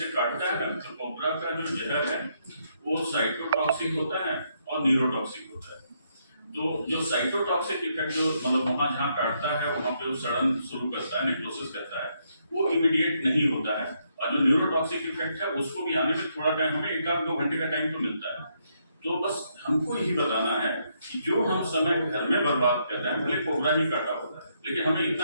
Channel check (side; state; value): both; inverted; correlation -0.75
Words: काटता है तो कोबरा का जो जहर है वो साइटोटॉक्सिक होता है और न्यूरोटॉक्सिक होता है। तो जो साइटोटॉक्सिक इफेक्ट जो मतलब वहाँ जहाँ काटता है वहाँ पे वो सड़न शुरू करता है, नेक्रोसिस करता है, वो इमीडिएट नहीं होता है। और जो न्यूरोटॉक्सिक इफेक्ट है उसको भी आने में थोड़ा टाइम, हमें 1-2 घंटे का टाइम तो मिलता है। तो बस हमको यही बताना है कि जो हम समय घर में बर्बाद कर रहे हैं, भले कोबरा ही काटा होता है, लेकिन हमें